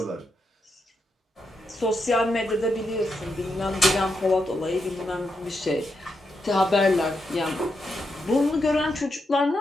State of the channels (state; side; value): normal; both; correlation 0.84